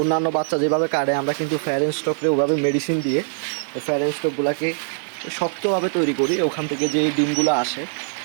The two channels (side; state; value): left; silent; digital silence